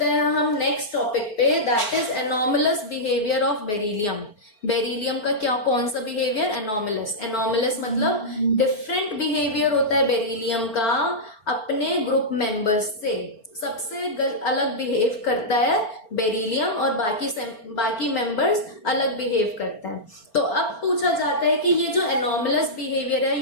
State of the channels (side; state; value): right; late; 4.8 ms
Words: हैं हम नेक्स्ट टॉपिक पे, that is anomalous behaviour of beryllium. Beryllium का क्या, कौन सा बिहेवियर, एनॉमलस। एनॉमलस मतलब डिफरेंट बिहेवियर होता है बेरिलियम का अपने ग्रुप मेंबर्स से। सबसे अलग बिहेव करता है बेरिलियम और बाकी मेंबर्स अलग बिहेव करता है। तो अब पूछा जाता है कि ये जो एनॉमलस बिहेवियर है